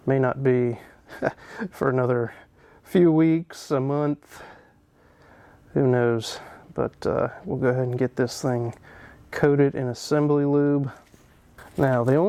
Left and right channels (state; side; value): identical; both; correlation 1.00